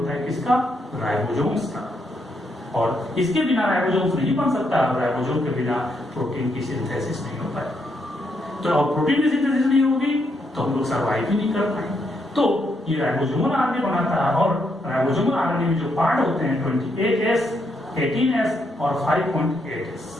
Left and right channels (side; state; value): both; normal; correlation 0.78